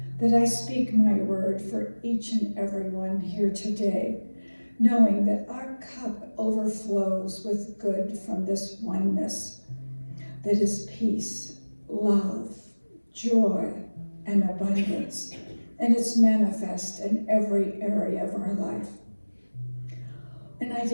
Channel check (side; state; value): both; inverted; correlation -1.00